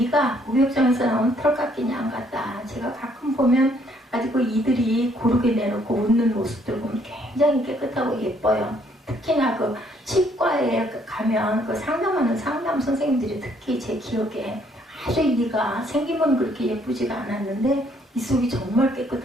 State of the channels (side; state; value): both; normal; correlation 0.66